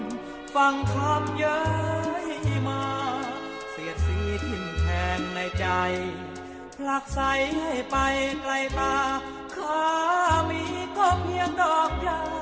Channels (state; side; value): identical; both; correlation 1.00